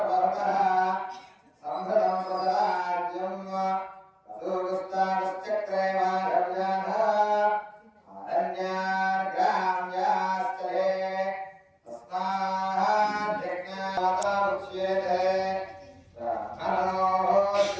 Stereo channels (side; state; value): both; identical; correlation 1.00